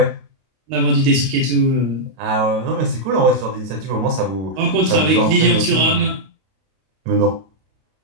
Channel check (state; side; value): late; left; 32 ms